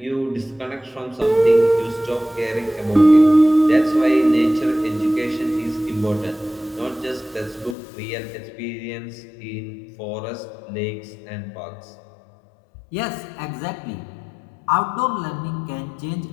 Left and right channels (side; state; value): right; drops out; at 7.8 s